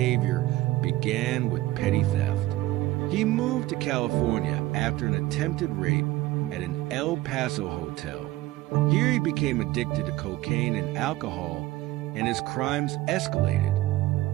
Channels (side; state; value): left; quieter; 17.1 dB